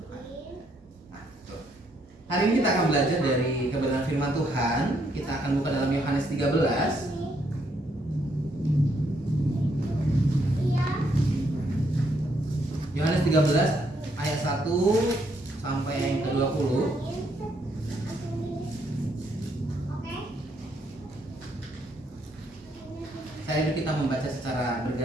Tuhan. Nah, tuh. Hari ini kita akan belajar dari kebenaran firman Tuhan. Kita akan buka dalam Yohanes 13. Yohanes 13 ayat 1 sampai yang ke-20. Saya kita membaca secara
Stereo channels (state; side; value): normal; both; correlation 0.73